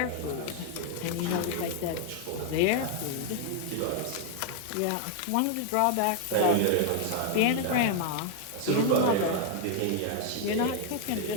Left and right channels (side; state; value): both; different; correlation 0.01